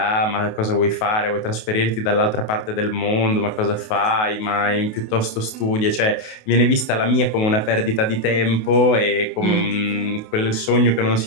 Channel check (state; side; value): late; right; 28 ms